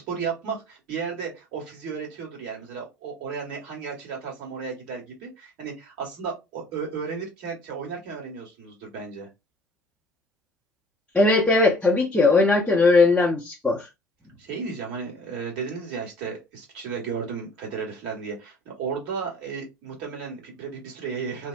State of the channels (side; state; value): both; normal; correlation 0.52